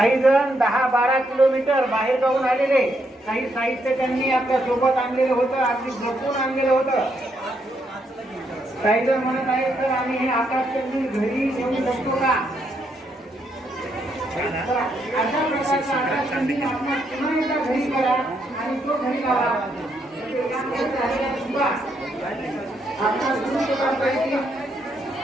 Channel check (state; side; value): normal; both; correlation 0.76